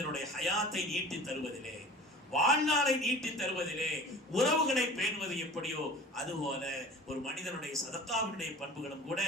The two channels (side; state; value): both; normal; correlation 0.42